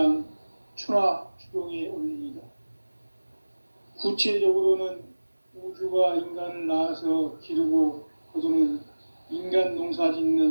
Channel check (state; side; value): inverted; both; correlation -1.00